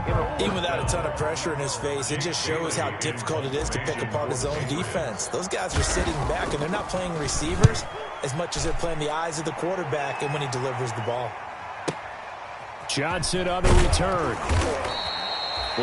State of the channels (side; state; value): both; identical; correlation 1.00